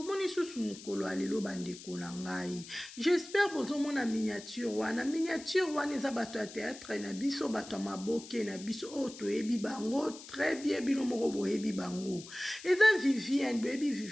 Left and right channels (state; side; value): noise; left; hiss, 15 dB below the sound